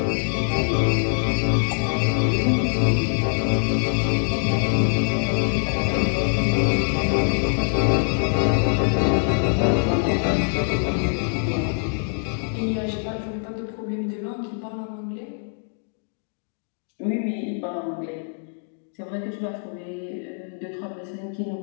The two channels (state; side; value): silent; right; digital silence